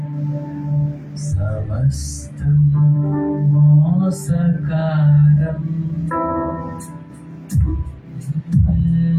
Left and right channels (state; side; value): identical; both; correlation 1.00